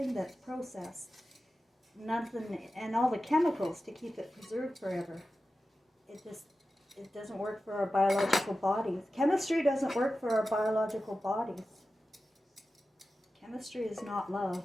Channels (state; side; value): normal; both; correlation 0.94